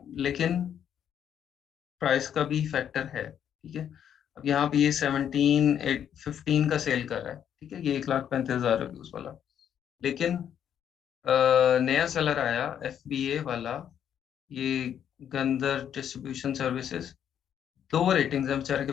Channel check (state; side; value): quieter; right; 9.2 dB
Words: लेकिन प्राइस का भी फैक्टर है, ठीक है। अब यहाँ पे ये 17-15 का सेल कर रहा है, ठीक है, ये 1,35,000 रिव्यूज वाला, लेकिन नया सेलर आया FBA वाला, ये गंदर डिस्ट्रीब्यूशन सर्विसेज, 2 रेटिंग्स है बेचारे के